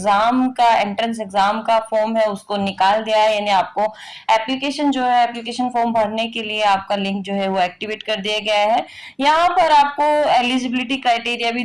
का एंट्रेंस एग्जाम का फॉर्म है उसको निकाल दिया है। यानी आपको एप्लीकेशन जो है, एप्लीकेशन फॉर्म भरने के लिए आपका लिंक जो है वो एक्टिवेट कर दिया गया है। यहाँ पर आपको एलिजिबिलिटी क्राइटेरिया भी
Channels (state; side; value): identical; both; correlation 1.00